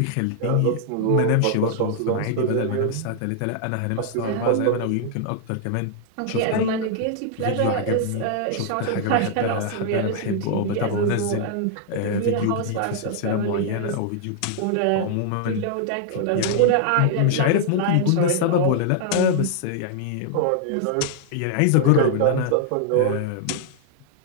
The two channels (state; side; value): different; both; correlation -0.01